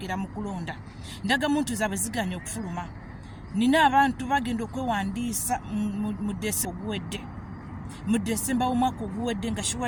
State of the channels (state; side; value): identical; both; correlation 1.00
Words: mu kulonda. Endagamuntu zaabwe ziganye okufuluma. Nina abantu bagenda okwewandiisa mu Desemba w'omwaka oguwedde nga